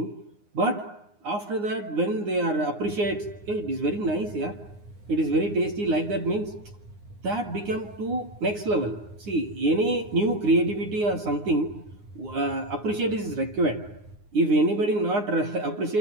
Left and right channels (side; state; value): left; late; 9.7 ms